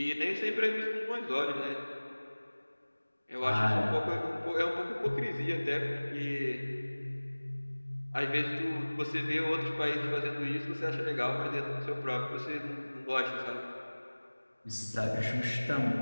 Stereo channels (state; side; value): inverted; both; correlation -1.00